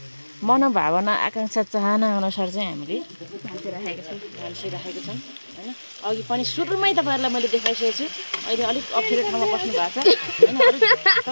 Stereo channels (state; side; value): inverted; both; correlation -1.00